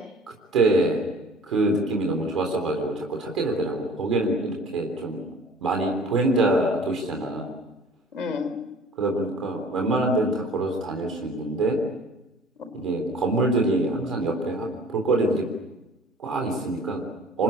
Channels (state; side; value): normal; both; correlation 0.48